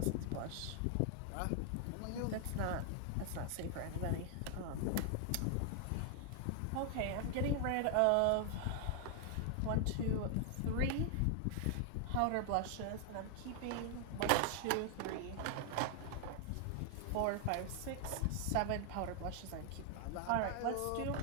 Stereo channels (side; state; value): both; different; correlation 0.00